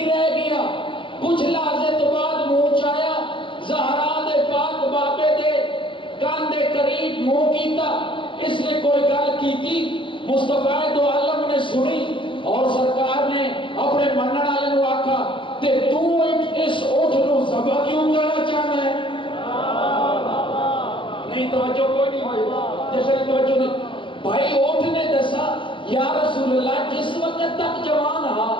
رہ گیا کچھ لحظے تو بعد منہ چایا زہرا دے پاک بابے دے کان دے قریب منہ کیتا اس نے کوئی گل کی تھی مصطفیٰ دو عالم نے سنی اور سرکار نے اپنے منن والے نو آکھا تے تو اس اٹھ نو ذبح کیوں کرنا چاہنا ہے نہیں توجہ کوئی نہیں ہوئی جیسے توجہ نہیں بھائی اٹھ نے دسا یا رسول اللہ جس وقت تک جوان ہا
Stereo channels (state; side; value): late; right; 0.25 ms